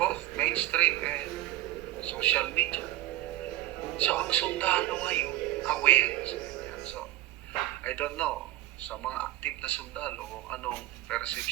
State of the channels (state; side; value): quieter; left; 15.5 dB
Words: mainstream and social media. So, ang sundalo ngayon, aware sa ganyan. So, I don't know sa mga active na sundalo kung anong